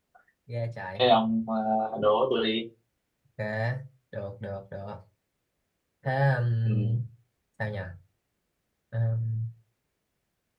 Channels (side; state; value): both; identical; correlation 1.00